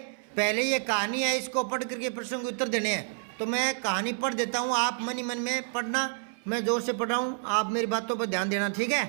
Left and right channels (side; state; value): left; silent; 58 dB below the other